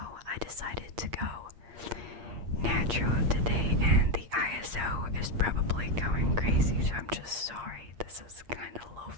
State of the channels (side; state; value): left; late; 8.5 ms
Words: decided to go natural today, and the ISO is probably going crazy, so I'm just sorry. This is kind of